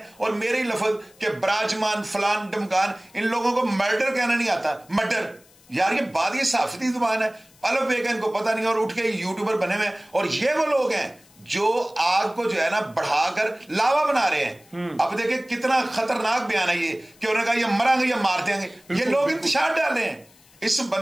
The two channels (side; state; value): left; noise; hiss, 28 dB below the sound